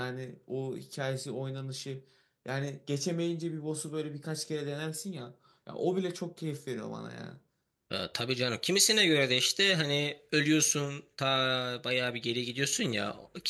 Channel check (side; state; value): both; identical; correlation 1.00